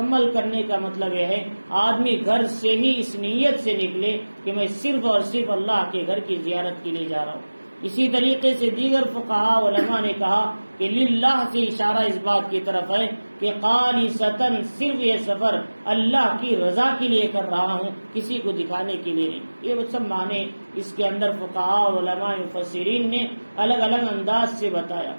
کرنے کا مطلب یہ ہے آدمی گھر سے ہی اس نیت سے نکلے کہ میں صرف اور صرف اللہ کے گھر کی زیارت کے لیے جا رہا ہوں۔ اسی طریقے سے دیگر فقہاء علماء نے کہا کہ للہ سے اشارہ اس بات کی طرف ہے کہ خالصتاً صرف یہ سفر اللہ کی رضا کے لیے کر رہا ہوں، کسی کو دکھانے کے لیے نہیں۔ یہ سب معنی اس کے اندر فقہاء علماء مفسرین نے الگ الگ انداز سے بتایا۔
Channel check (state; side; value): inverted; both; correlation -1.00